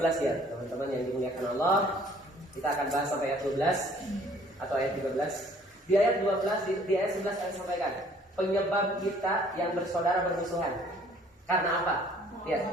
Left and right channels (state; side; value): normal; both; correlation 0.57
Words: ya teman-teman yang dimuliakan Allah. Kita akan bahas sampai ayat 12 atau ayat 13. Di ayat 12 di ayat 11 saya sampaikan penyebab kita yang bersaudara bermusuhan. Karena apa? Ya.